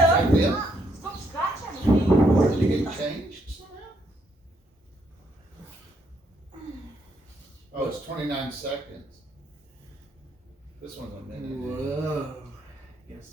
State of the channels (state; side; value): normal; both; correlation 0.73